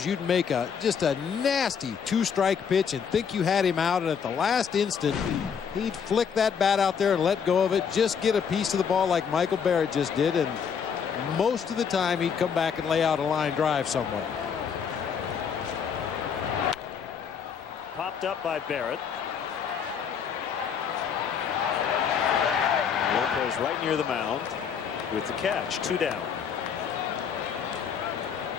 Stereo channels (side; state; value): right; quieter; 7.1 dB